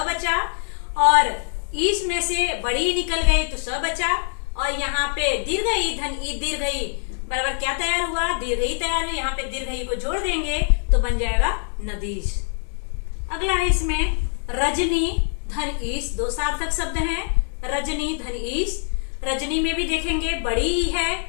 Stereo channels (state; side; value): silent; right; 58 dB below the other